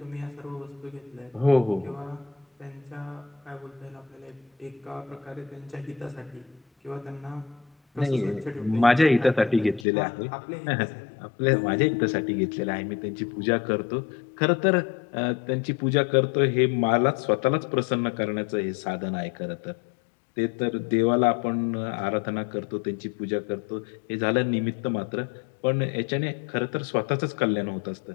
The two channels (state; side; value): drops out; right; at 9.9 s